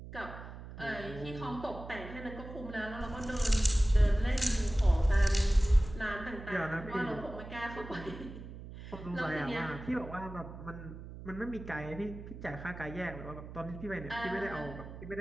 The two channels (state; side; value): noise; right; hum, 12 dB below the sound